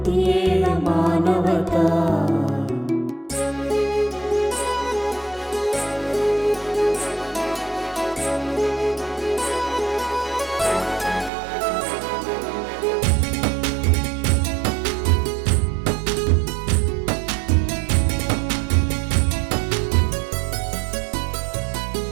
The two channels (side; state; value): left; drops out; at 11.3 s